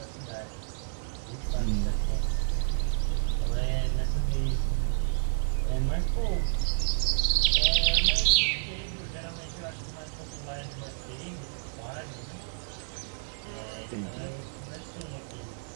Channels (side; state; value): left; silent; digital silence